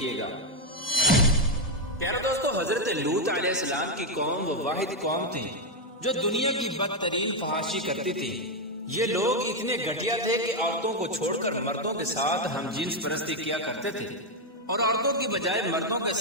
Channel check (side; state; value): both; normal; correlation 0.03